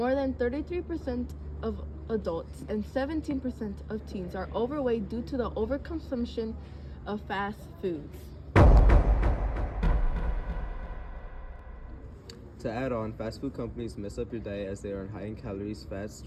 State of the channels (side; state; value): both; identical; correlation 1.00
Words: than 33% of adults and 17% of teens are overweight due to the overconsumption of fast foods. To add on, fast food companies mess up your diet as they are high in calories, fats,